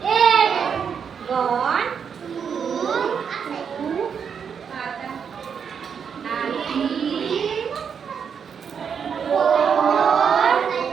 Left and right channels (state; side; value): quieter; left; 7.0 dB